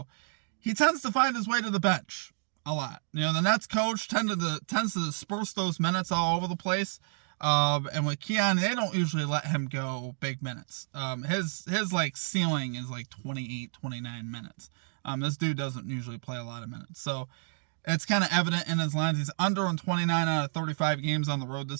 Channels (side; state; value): left; silent; digital silence